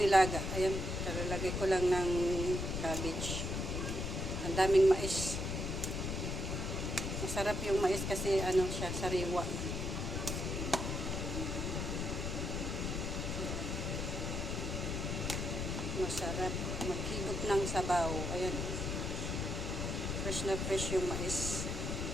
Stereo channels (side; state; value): left; noise; rumble, 2 dB below the sound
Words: Ayan, talalagay ko lang ng cabbage. Ang daming mais. Masarap yung mais kasi ano siya, sariwa. Masarap. Maghigop ng sabaw. Ayan. Fresh na fresh yung mais.